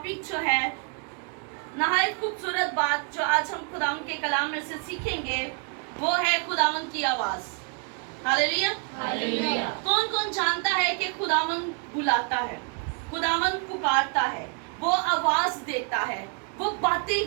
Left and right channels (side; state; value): left; quieter; 37.7 dB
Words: जो है नहायत खूबसूरत बात जो आज हम खुदावंद के कलाम में से सीखेंगे वो है खुदावंद की आवाज। हालेलुया। कौन कौन जानता है कि खुदावंद बुलाता है, खुदावंद पुकारता है, वो आवाज देता है, वो बातें